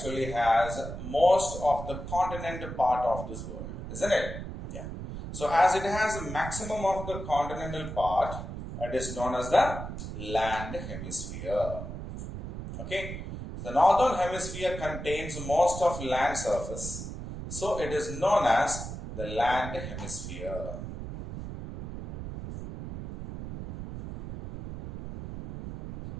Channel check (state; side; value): noise; right; rumble, 8 dB below the sound